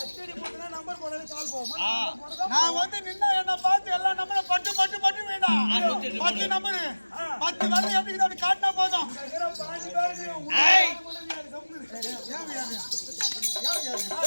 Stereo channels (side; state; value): both; inverted; correlation -1.00